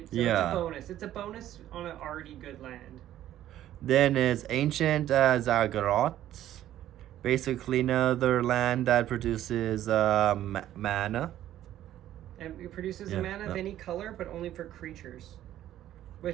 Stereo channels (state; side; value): quieter; left; 12.6 dB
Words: So Yeah. it's a bonus. It's a bonus on an already good land. Then is Ancient Zagreot. Basically another land that produces mana. And it produces a mana of any color, but only for creatures.